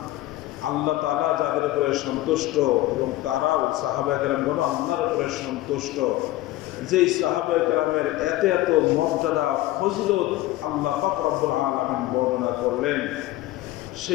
আল্লাহ তাআলা যাদের উপরে সন্তুষ্ট এবং তারাও সাহাবায়ে কেরামগণ আল্লাহর উপরে সন্তুষ্ট। যেই সাহাবায়ে কেরামের এত এত মর্যাদা ফজিলত আল্লাহ পাক রব্বুল আলামিন বর্ণনা করলেন,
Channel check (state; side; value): quieter; right; 16.6 dB